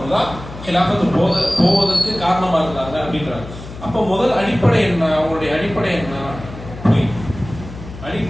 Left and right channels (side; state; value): left; noise; hum, 13 dB below the sound